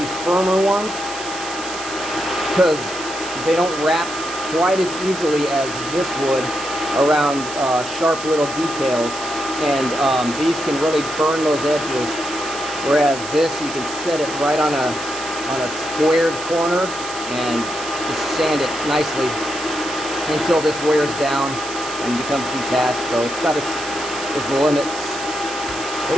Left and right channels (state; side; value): noise; right; hiss, 11 dB below the sound